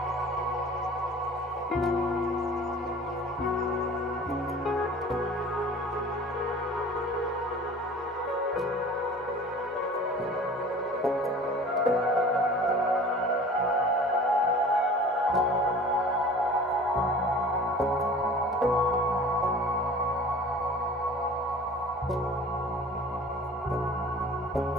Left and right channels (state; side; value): normal; both; correlation 0.43